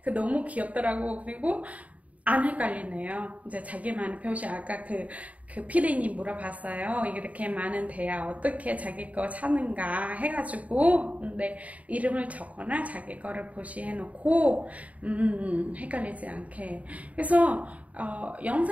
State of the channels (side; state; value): left; late; 0.069 ms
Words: 너무 귀엽더라고. 그리고 안 헷갈리네요. 이제 자기만의 표시. 아까 그 피디님 물어봤어요. 이렇게 많은 대야 어떻게 자기 거 찾는가 해가지고, 근데 이름을 적거나 자기 거를 표시해 놓고 헷갈리지 않게. 그래서